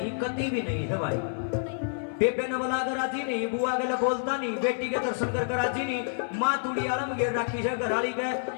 कति भी नहीं है भाई बेबे ने बोला कर राजी नहीं बुआ के लिए बोलता नहीं बेटी के दर्शन कर राजी नहीं माँ तुड़ी आलम घेर रखी है घरवाली के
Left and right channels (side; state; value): right; silent; 59 dB below the other